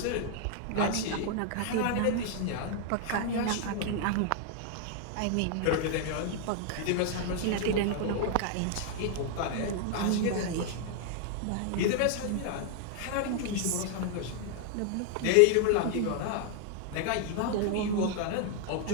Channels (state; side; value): different; both; correlation 0.00